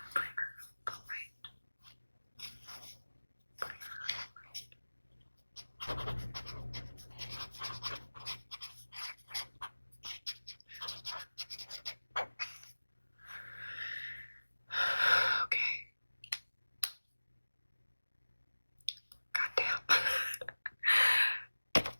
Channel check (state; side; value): inverted; both; correlation -1.00